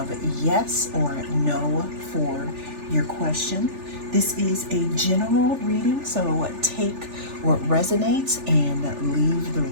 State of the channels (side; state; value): left; late; 3.4 ms